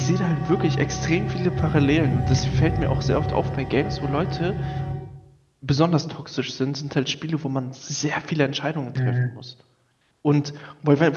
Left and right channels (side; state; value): both; identical; correlation 1.00